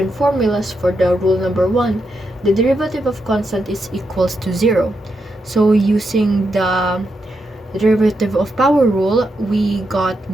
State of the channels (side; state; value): both; normal; correlation 0.84